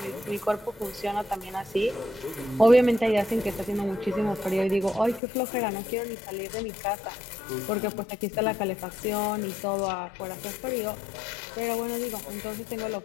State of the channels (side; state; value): right; drops out; at 5.2 s